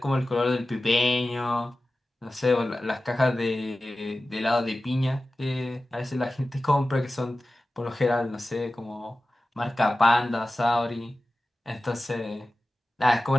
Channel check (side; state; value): both; normal; correlation 0.95